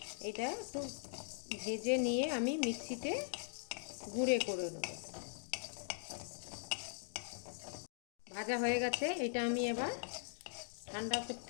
এটা একটু ভেজে নিয়ে আমি মিক্সিতে গুঁড়ো করে নেব। ভাজা হয়ে গেছে। এটা আমি এবার ঠান্ডা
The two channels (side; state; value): right; silent; digital silence